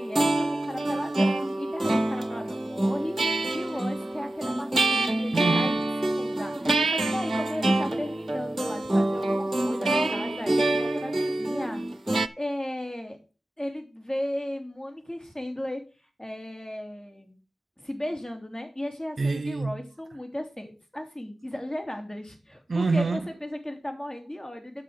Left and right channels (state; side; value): normal; both; correlation 0.94